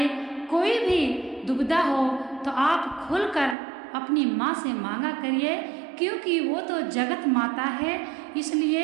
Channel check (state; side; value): drops out; left; at 3.6 s